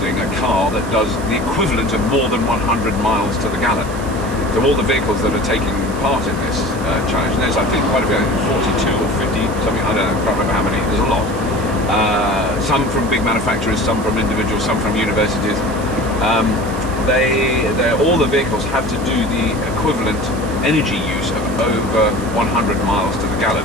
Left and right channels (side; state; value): right; noise; hiss, 17 dB below the sound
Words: a car that does the equivalent of more than 100 miles to the gallon. So all the vehicles that are taking part in this challenge, and there's I think quite a few, 42 or 50, something, I don't know, I can't remember how many, there's a lot. Some from big manufacturers, some from individuals, some from universities. All the vehicles have to do the equivalent energy use of over 100 miles to the